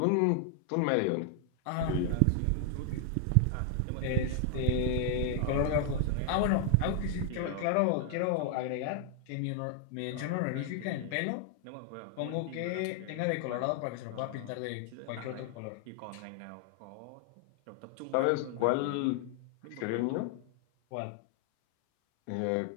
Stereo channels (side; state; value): both; different; correlation 0.00